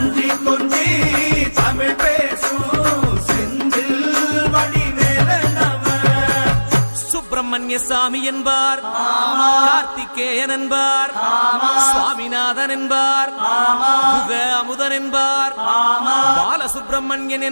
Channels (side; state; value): both; inverted; correlation -1.00